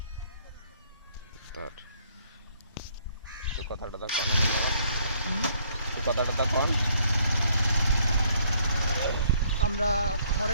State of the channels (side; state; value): both; inverted; correlation -0.66